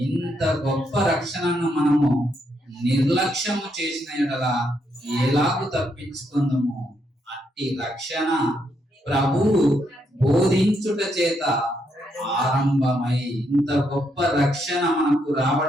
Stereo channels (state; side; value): normal; both; correlation 0.77